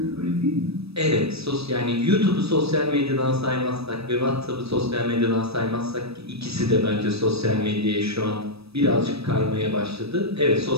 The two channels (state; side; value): late; left; 0.78 ms